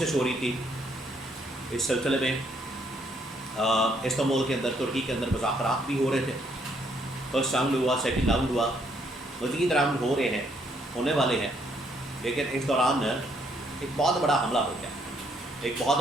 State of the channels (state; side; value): normal; both; correlation 0.70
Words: ہو رہی تھی۔ اس سلسلے میں استنبول کے اندر، ترکی کے اندر مذاکرات بھی ہو رہے تھے۔ فرسٹ راؤنڈ ہوا، سیکنڈ راؤنڈ ہوا، مزید راؤنڈ ہو رہے ہیں، ہونے والے ہیں، لیکن اس دوران ایک بہت بڑا حملہ ہو گیا، ایک